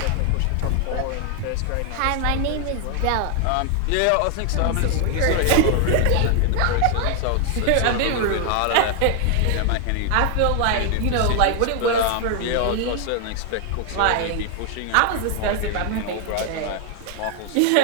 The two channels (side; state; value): both; different; correlation 0.00